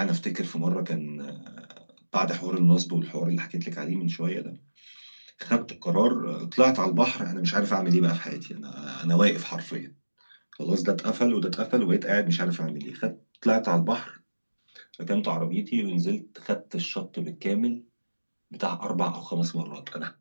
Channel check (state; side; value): inverted; both; correlation -1.00